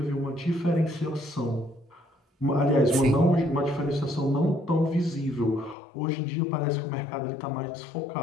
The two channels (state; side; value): drops out; right; at 5.8 s